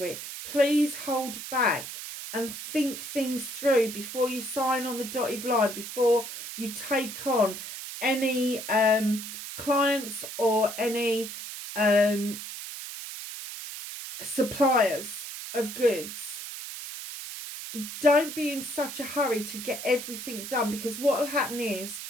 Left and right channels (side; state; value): right; noise; hiss, 9 dB below the sound